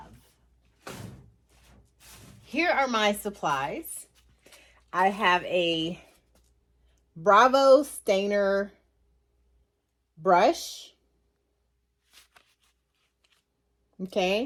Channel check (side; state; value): both; identical; correlation 1.00